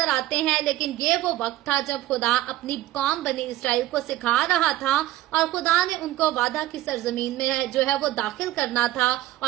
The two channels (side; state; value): left; quieter; 15.2 dB